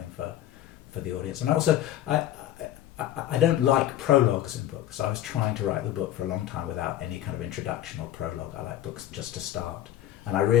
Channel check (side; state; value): right; quieter; 12.5 dB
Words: for the audience. And also, I don't like prologues in books. I was trying to write the book for a long time without any kind of introduction or prologue. I like books just to start. And I